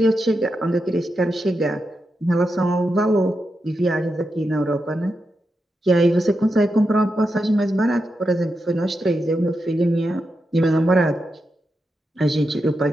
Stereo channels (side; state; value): both; normal; correlation 0.87